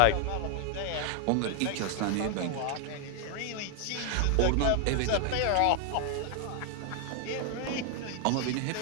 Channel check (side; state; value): both; different; correlation 0.00